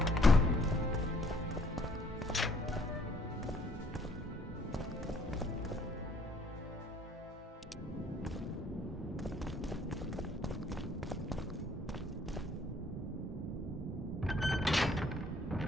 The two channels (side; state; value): both; normal; correlation 0.62